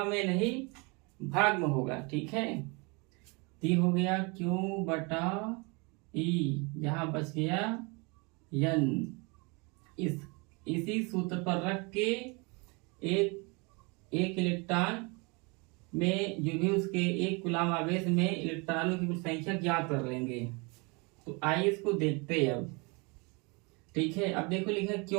में नहीं भाग में होगा। ठीक है, तो ये हो गया Q बटा E, यहाँ बच गया n। इसी सूत्र पर रख के एक इलेक्ट्रॉन में जो भी उसके एक कूलाम आवेश में इलेक्ट्रॉनों की कुछ संख्या ज्ञात कर लेंगे। तो आइए इसको देखते हैं अब। ठीक है, अब देखो लिखा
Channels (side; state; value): left; quieter; 29.6 dB